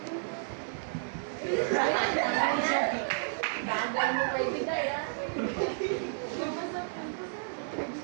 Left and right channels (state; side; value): silent; left; 57 dB below the other